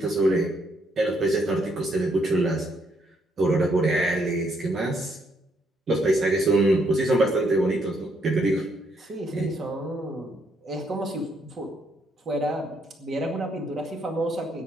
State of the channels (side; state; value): both; normal; correlation 0.73